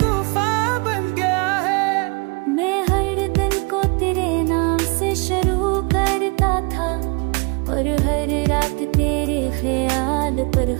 बन गया है। मैं हर दिन को तेरे नाम से शुरू करता था, और हर रात तेरे ख्याल पर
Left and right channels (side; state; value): left; quieter; 31.7 dB